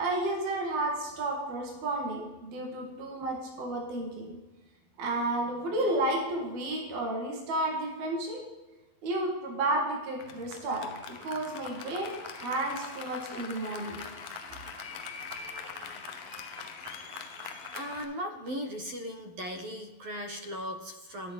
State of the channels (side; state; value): left; late; 12 ms